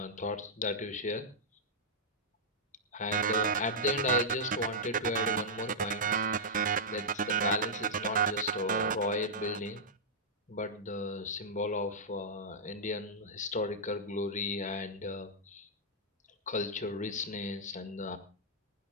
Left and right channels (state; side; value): normal; both; correlation -0.11